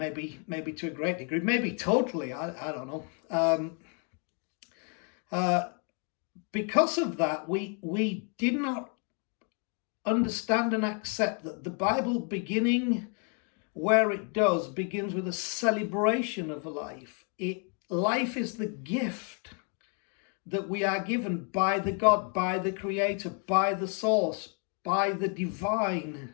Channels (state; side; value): quieter; right; 38.7 dB